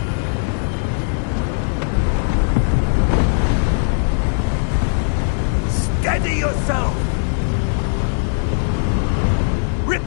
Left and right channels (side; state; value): right; silent; digital silence